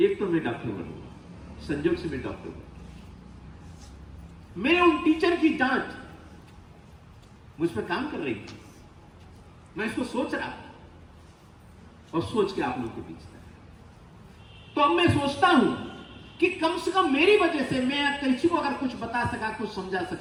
एक तो मैं डॉक्टर बनूंगा, संजोग से मैं डॉक्टर बनूंगा। मेरे उन टीचर की डांट मुझ पर काम कर रही थी, मैं इसको सोच रहा और सोच के आप लोगों के बीच था। तो अब मैं सोचता हूं कि कम से कम मेरी वजह से मैं किसी को अगर कुछ बता सका, कुछ समझा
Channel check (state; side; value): identical; both; correlation 1.00